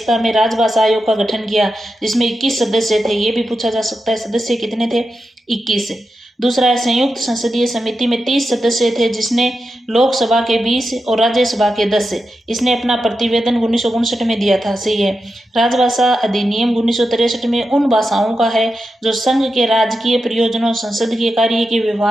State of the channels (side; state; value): both; normal; correlation 0.89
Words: में राजभाषा आयोग का गठन किया, जिसमें 21 सदस्य थे। ये भी पूछा जा सकता है, सदस्य कितने थे? 21। दूसरा है, संयुक्त संसदीय समिति में 30 सदस्य थे, जिसने लोकसभा के 20 और राज्यसभा के 10। इसने अपना प्रतिवेदन 1959 में दिया था। सही है। राजभाषा अधिनियम 1963 में उन भाषाओं का है जो संघ के राजकीय प्रयोजनों, संसद के कार्य के